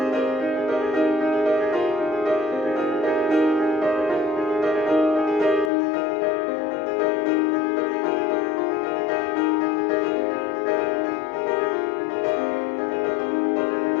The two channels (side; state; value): right; drops out; at 5.7 s